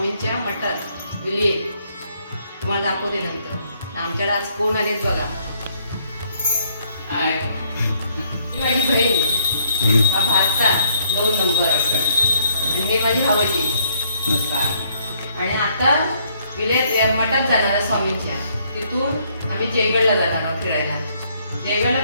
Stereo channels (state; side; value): inverted; both; correlation -0.69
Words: मठात विले, तुम्हाला दाखवते नंतर. आमच्याकडे आज कोण आलेत बघा. ही माझी बहीण, हा भाचा 2 नंबर आणि हे माझी भावजी. आणि आता विलेत मठात जाणार आहे स्वामींच्या. तिथून आम्ही जयगडला जाणार आहोत फिरायला. जयगडला